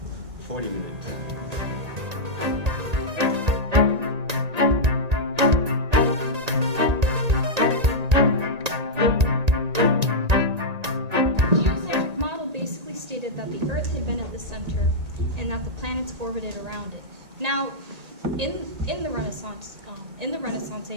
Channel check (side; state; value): left; late; 1.8 ms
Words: 40 minutes. Geocentric model basically stated that the Earth had been at the center and that the planets orbited around it. Now, in the Renaissance